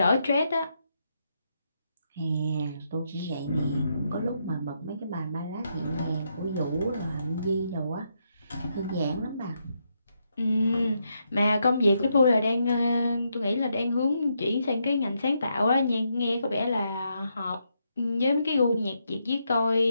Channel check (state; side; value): inverted; both; correlation -0.80